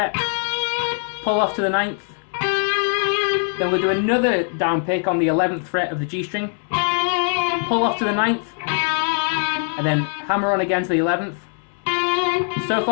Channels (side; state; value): right; silent; 63 dB below the other